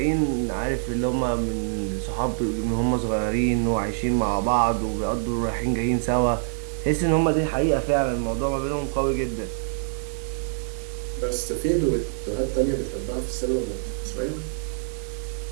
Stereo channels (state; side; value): silent; left; digital silence